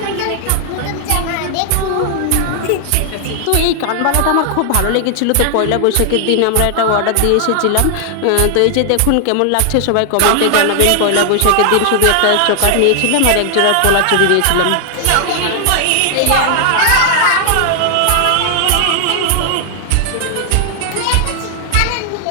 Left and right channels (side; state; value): both; different; correlation 0.00